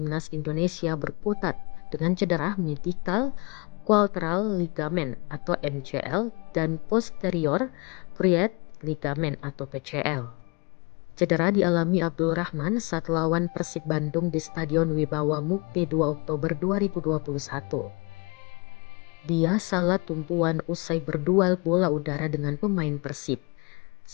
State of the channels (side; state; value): right; quieter; 29.6 dB